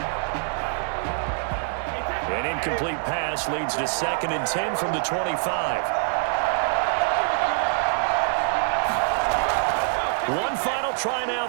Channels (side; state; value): left; silent; 62 dB below the other